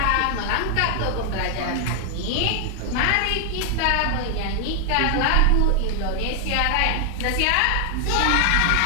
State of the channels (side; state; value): both; different; correlation 0.00